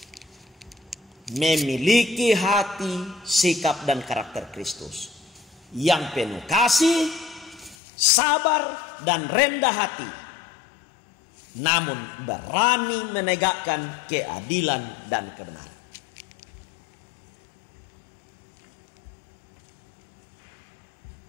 Memiliki hati, sikap, dan karakter Kristus yang penuh kasih, sabar, dan rendah hati, namun berani menegakkan keadilan dan kebenaran.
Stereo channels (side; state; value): right; drops out; at 7.8 s